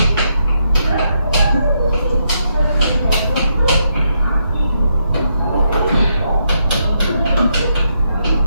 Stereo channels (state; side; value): inverted; both; correlation -0.80